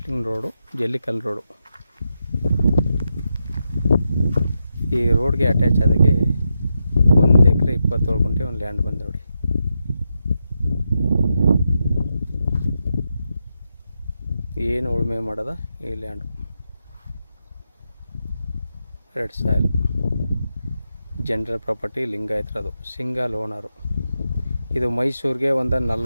ರೋಡು, ಜಲ್ಲಿಕಲ್ಲು ರೋಡು. ಈ ರೋಡ್ಗೆ ಅಟ್ಯಾಚ್ ಆದಾಗೆ 1 ಎಕರೆ 27 ಗುಂಟೆ ಒಂದು ಲ್ಯಾಂಡ್ ಬಂದು ನೋಡಿ. ಏನು ಉಳುಮೆ ಮಾಡೋದ ಈ land. Red soil, general property, ಲಿಂಗಾಯತ್ರದು, ಸಿಂಗಲ್ ಓನರು. ಇದು ಮೈಸೂರಿಗೆ ಒಂದು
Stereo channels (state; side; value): inverted; both; correlation -0.86